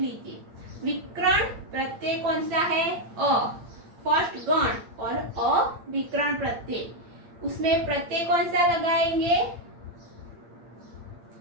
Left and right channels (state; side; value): late; left; 8.7 ms